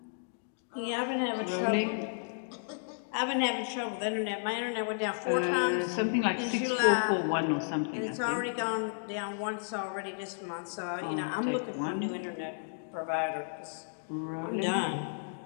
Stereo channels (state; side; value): silent; right; digital silence